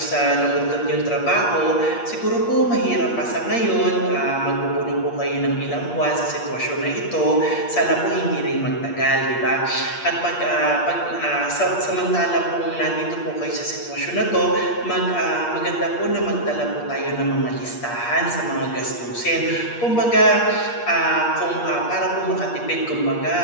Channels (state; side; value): late; right; 8.5 ms